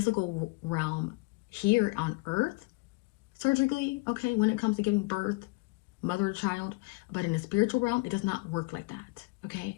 realm here on Earth, surgically, okay, when it comes to giving birth, mother to child, but in the spiritual realm, it does not work like that,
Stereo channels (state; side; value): quieter; right; 26.2 dB